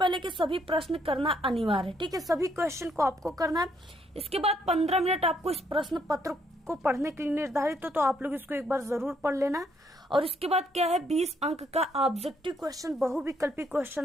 कि सभी प्रश्न करना अनिवार्य है। ठीक है, सभी क्वेश्चन को आपको करना है। इसके बाद 15 मिनट आपको इस प्रश्न पत्र को पढ़ने के लिए निर्धारित हो, तो आप लोग इसको एक बार जरूर पढ़ लेना। और इसके बाद क्या है, 20 अंक का ऑब्जेक्टिव क्वेश्चन, बहुविकल्पी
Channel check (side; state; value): both; normal; correlation 0.71